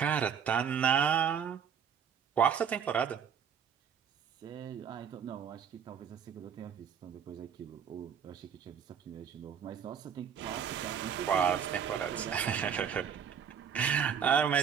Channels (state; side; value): quieter; left; 7.7 dB